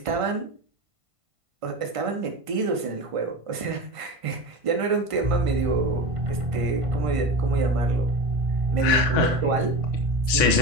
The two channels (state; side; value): late; left; 1.5 ms